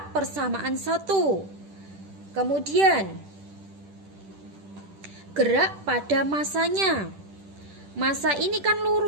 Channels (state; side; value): late; left; 10 ms